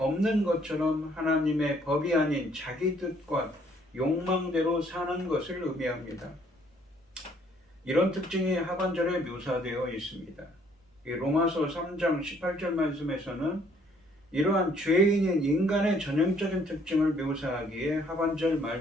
것처럼 하나님의 법이 아닌 자기 뜻과 욕망대로 사는 것을 의미합니다. 이런 특징이 하반절에 묘사되어 있습니다. 로마서 3장 18절 말씀에서는 이러한 죄인인 인간의 전형적인 특징을 묘사하기에 하반절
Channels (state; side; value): normal; both; correlation 0.63